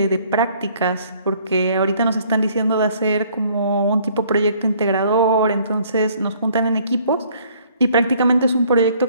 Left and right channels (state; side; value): inverted; both; correlation -0.60